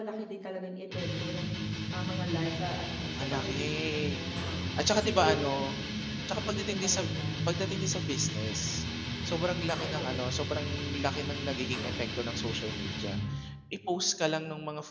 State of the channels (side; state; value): both; identical; correlation 1.00